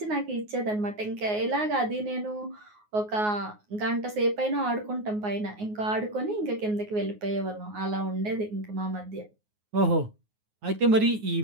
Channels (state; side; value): late; left; 9.5 ms